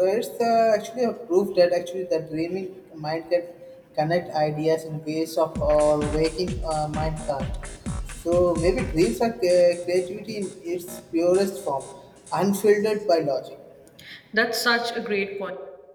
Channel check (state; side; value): identical; both; correlation 1.00